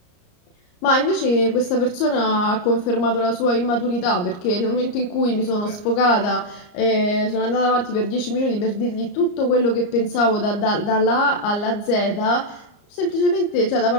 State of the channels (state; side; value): late; right; 34 ms